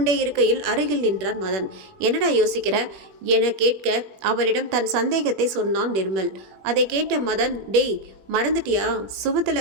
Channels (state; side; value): late; left; 21 ms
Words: இருக்கையில் அருகில் நின்றான் மதன். என்னடா யோசிக்கிற என கேட்க அவனிடம் தன் சந்தேகத்தை சொன்னான் நிர்மல். அதை கேட்ட மதன், டேய் மறந்துட்டியா?